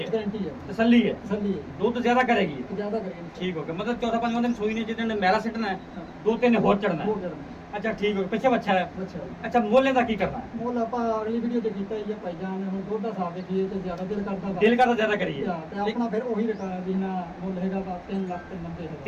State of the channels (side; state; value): both; identical; correlation 1.00